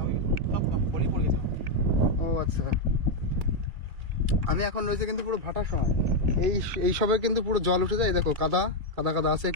হয়ে গেছে, সব পলি পড়ে গেছে। ও আচ্ছা, আমি এখন রয়েছে কিন্তু পুরো ভাটার সময়। এই সবে কিন্তু পুরো জল উঠে যায়, দেখো কাদা কাদা কাদা আছে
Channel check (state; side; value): late; left; 2.3 ms